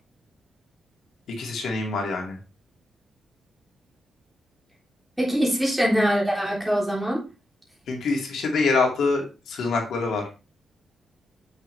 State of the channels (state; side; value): normal; both; correlation 0.85